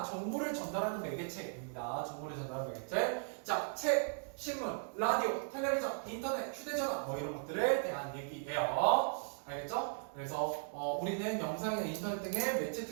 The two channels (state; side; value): silent; left; digital silence